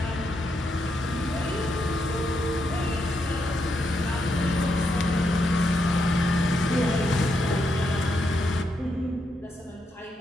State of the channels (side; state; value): both; normal; correlation 0.81